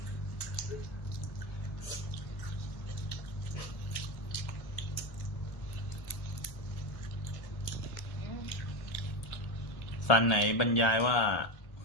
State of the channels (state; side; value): late; right; 1.2 ms